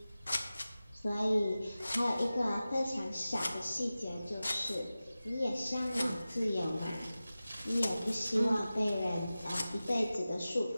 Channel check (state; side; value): inverted; both; correlation -0.96